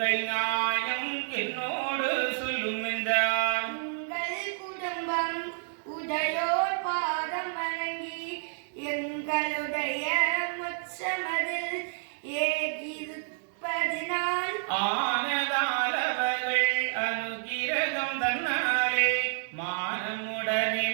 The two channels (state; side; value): silent; left; digital silence